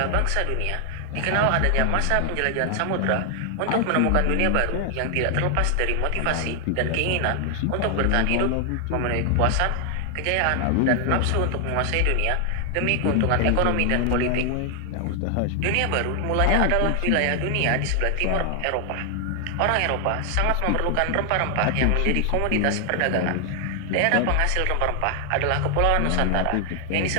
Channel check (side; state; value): both; different; correlation 0.00